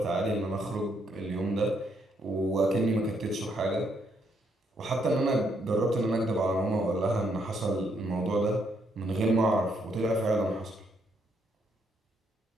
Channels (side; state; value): both; normal; correlation 0.74